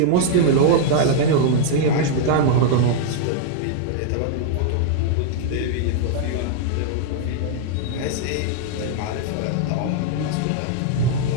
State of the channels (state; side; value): different; both; correlation 0.00